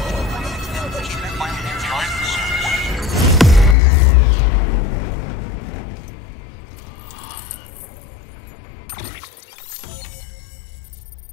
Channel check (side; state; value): right; drops out; at 3.8 s